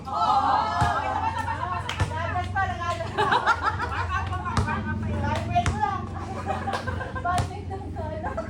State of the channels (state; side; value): identical; both; correlation 1.00